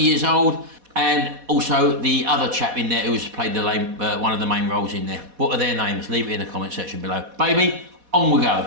years old. And also the other chap in there who's played one of the main roles in there. What are their names? Leave it in the comment section below. Baby, on we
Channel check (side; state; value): left; late; 4.1 ms